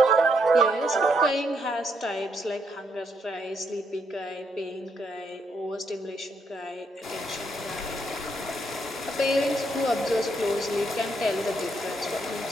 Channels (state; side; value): normal; both; correlation 0.75